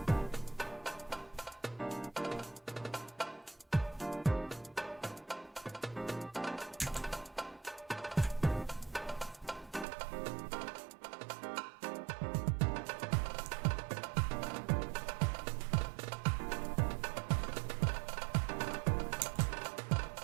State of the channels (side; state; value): left; drops out; at 9.9 s